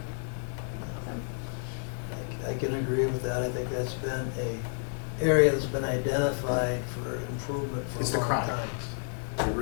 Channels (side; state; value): right; silent; digital silence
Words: So, I can agree with that. I think that's been a area that's been identified for improvement for It's a the long chronic. time. It